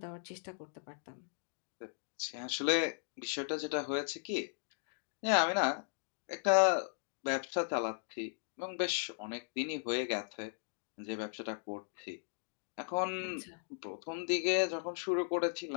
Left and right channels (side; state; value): right; silent; digital silence